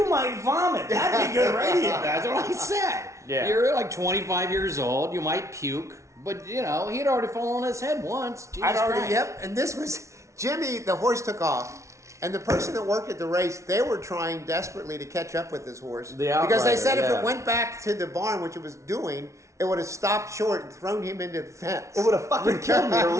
might vomit. That'd be good radio. That's what I said. Yeah. You're like 25 years old. You might puke, but he'd already fallen on his head once. Jesus Christ. Yep. And this was Jimmy. The horse took off. And the person that worked at the race, they were trying desperately to catch up with this horse. Because they said if it went back to the barn, which it was doing, it would have stopped short and thrown him into the fence. It would have fucking killed me or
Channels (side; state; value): left; late; 0.14 ms